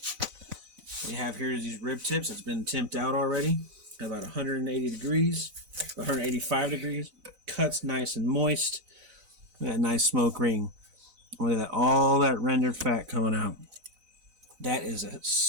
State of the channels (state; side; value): late; left; 4.0 ms